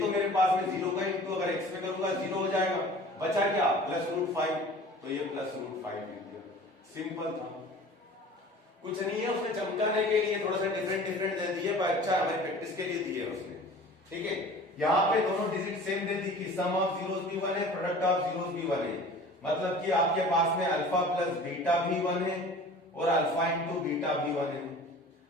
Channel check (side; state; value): both; normal; correlation 0.43